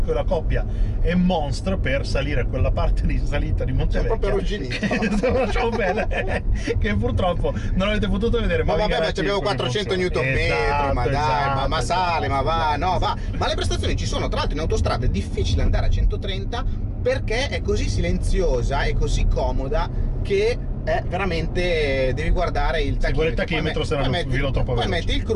e la coppia è monstra per salire quella parte di salita di Montevecchia. Sono proprio arrugginito. Lasciamo bene, che purtroppo non avete potuto vedere. Ma vabbè, ma abbiamo 400 Nm, ma dai, ma sale, ma va, no, va. Ma le prestazioni ci sono. Tra l'altro in autostrada è difficile andare a 130 perché è così silenziosa e così comoda che è veramente, devi guardare il tachimetro, se non filo troppo veloce. Poi metti il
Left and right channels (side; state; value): both; identical; correlation 1.00